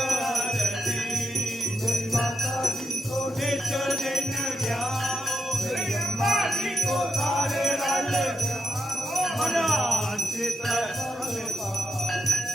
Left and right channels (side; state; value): both; normal; correlation 0.85